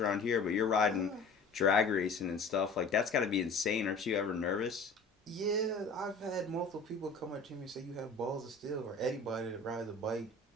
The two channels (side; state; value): right; quieter; 3.7 dB